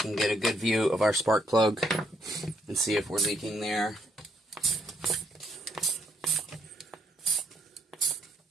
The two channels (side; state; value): both; normal; correlation 0.72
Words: get a good view of our spark plug and see if we're leaking there.